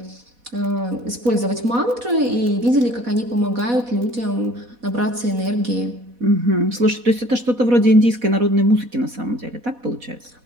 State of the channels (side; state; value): left; late; 4.1 ms